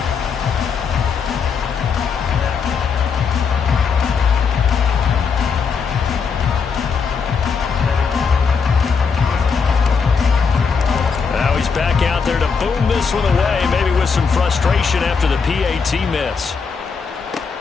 Back out there to boom this one away, maybe with some frustration after the PAT miss.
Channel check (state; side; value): quieter; right; 5.7 dB